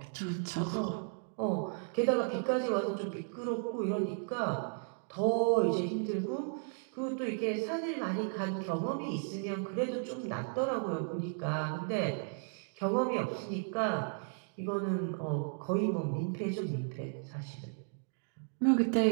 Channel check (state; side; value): silent; left; 55 dB below the other